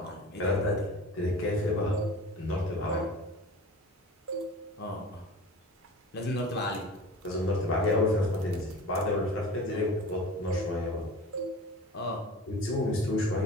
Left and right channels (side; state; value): both; normal; correlation 0.38